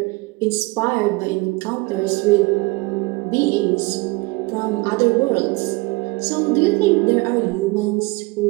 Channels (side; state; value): left; quieter; 24.8 dB